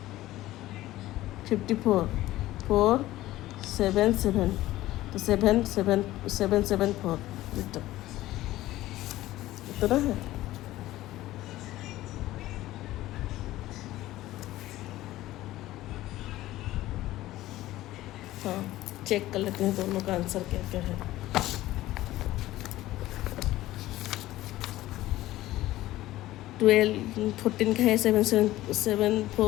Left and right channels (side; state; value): right; quieter; 15.9 dB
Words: 54 477, तो 774 मीटर इतना है। हाँ, चेक कर लेते हैं दोनों का आंसर क्या क्या है। 14 का है